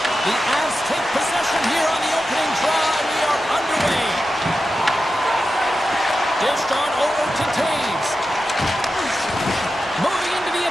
The Avs take possession here on the opening draw, and we are underway. Dished on over to Taves. Moving into the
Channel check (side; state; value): both; normal; correlation 0.91